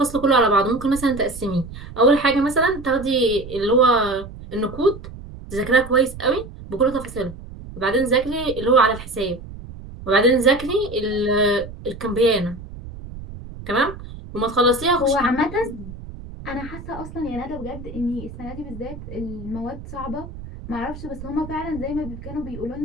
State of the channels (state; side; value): noise; right; rumble, 13 dB below the sound